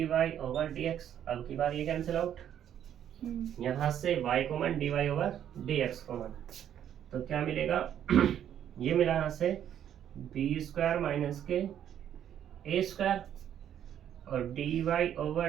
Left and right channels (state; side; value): quieter; left; 10.0 dB